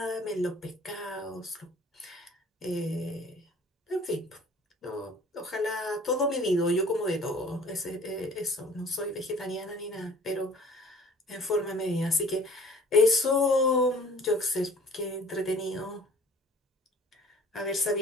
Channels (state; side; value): normal; both; correlation 0.50